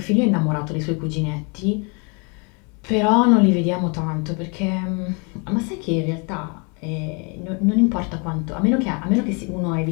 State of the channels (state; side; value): quieter; right; 33.3 dB